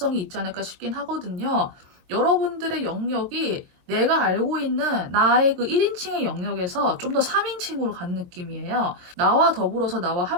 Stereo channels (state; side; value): late; left; 22 ms